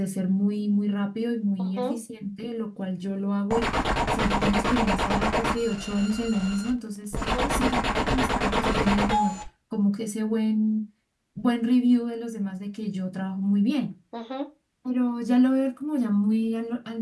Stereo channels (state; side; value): identical; both; correlation 1.00